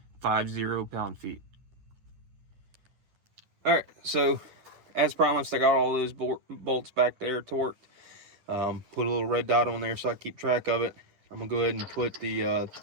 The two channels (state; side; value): late; left; 10 ms